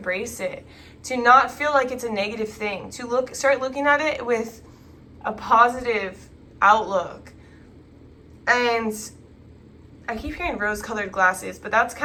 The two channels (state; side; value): identical; both; correlation 1.00